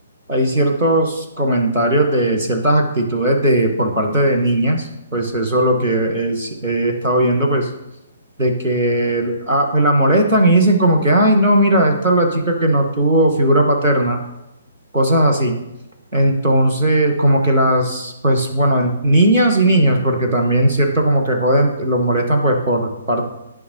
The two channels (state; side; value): inverted; both; correlation -0.59